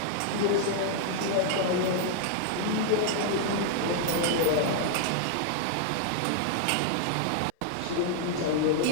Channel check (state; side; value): different; both; correlation 0.00